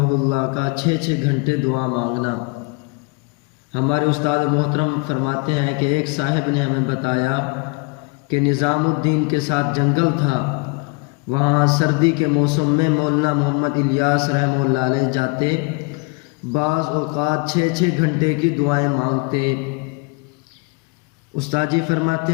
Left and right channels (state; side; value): quieter; right; 30.8 dB